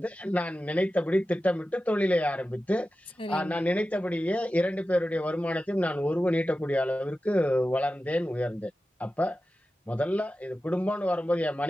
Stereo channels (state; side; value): normal; both; correlation 0.94